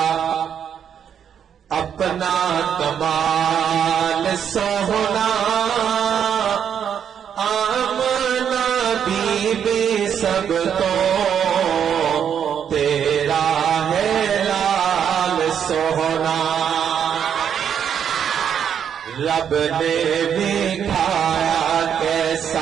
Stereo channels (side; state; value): left; quieter; 8.4 dB